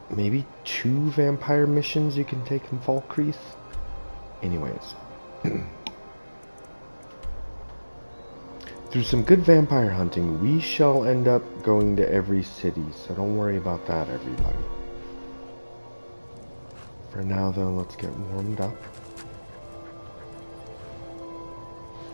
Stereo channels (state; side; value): inverted; both; correlation -1.00